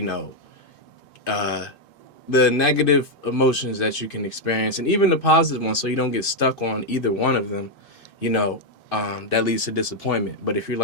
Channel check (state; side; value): late; right; 2.5 ms